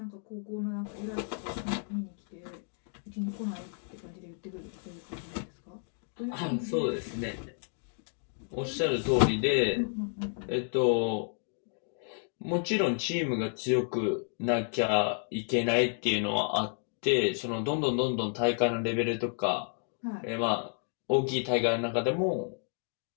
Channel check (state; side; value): silent; right; 56 dB below the other